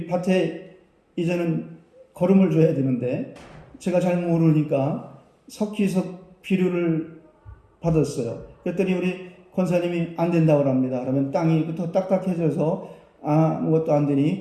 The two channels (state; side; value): identical; both; correlation 1.00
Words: 밭에 이제는 거름을 줘야 되는데 제가 잘 모르니까 석기석 비료를 받았어요. 그랬더니 우리 권사님이 안 된다고 합니다. 그러면 땅이 더 딱딱해져서 아무것도 안